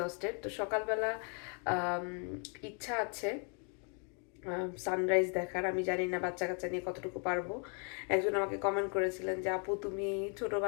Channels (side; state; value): right; quieter; 39.0 dB